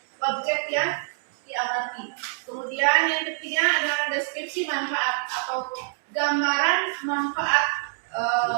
objek yang diamati. Kemudian yang ketiga adalah deskripsi manfaat atau gambaran manfaat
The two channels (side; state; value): left; silent; digital silence